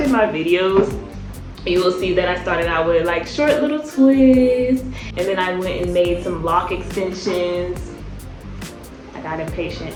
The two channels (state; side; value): identical; both; correlation 1.00